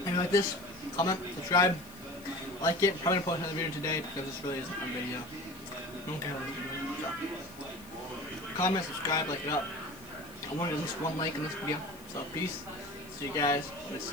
If you like this, comment, subscribe, like it. Probably gonna post another video today because this really isn't a video. I don't care what you do. So, comment, subscribe, like it up. I wanted at least one like in this video. So peace. See you guys. Let's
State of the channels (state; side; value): noise; left; hiss, 22 dB below the sound